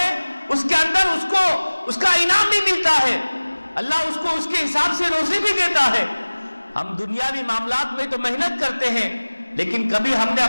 اس کے اندر اس کو اس کا انعام بھی ملتا ہے، اللہ اس کو اس کے حساب سے روزی بھی دیتا ہے۔ ہم دنیاوی معاملات میں تو محنت کرتے ہیں، لیکن کبھی ہم نے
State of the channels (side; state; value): both; inverted; correlation -1.00